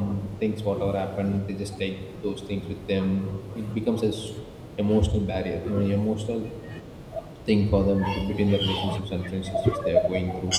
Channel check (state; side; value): identical; both; correlation 1.00